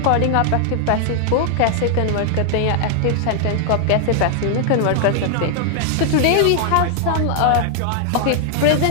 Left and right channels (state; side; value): different; both; correlation 0.00